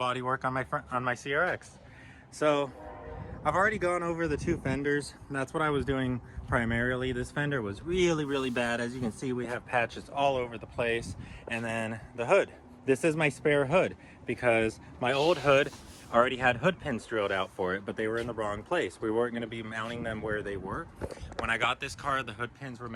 on my CRX. So I've already gone over the two fenders. That's what I was doing primarily. This fender was really bad. As you can see, we have patches all over the place. And then the hood. This is my spare hood because my old hood already had hood pins drilled out for it, but they were in the wrong place. We weren't going to be mounting them where they were. When I got this car, the hood pins were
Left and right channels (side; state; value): both; identical; correlation 1.00